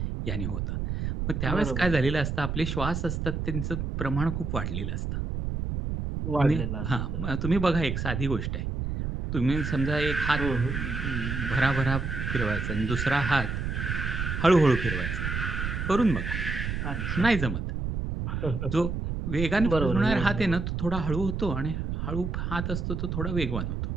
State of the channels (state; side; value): noise; right; rumble, 3 dB below the sound